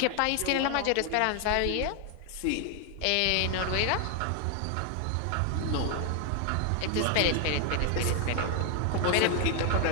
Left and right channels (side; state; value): both; different; correlation 0.00